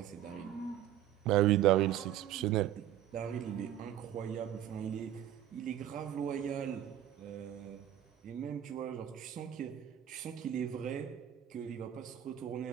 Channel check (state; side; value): quieter; left; 11.8 dB